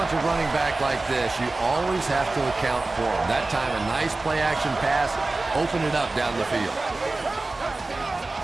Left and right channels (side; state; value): left; quieter; 3.2 dB